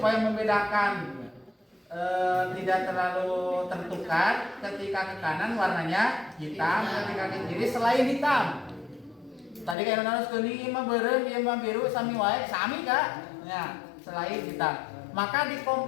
membedakan tidak terlalu tertukar, ketika ke kanan warnanya hitam, ketika ke kiri selain hitam. Tadi kayak harus kuning, mah beureum, ieu mah biru, sami wae, sami Kak. Ya, selain hitam. Maka di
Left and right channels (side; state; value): right; drops out; at 9.8 s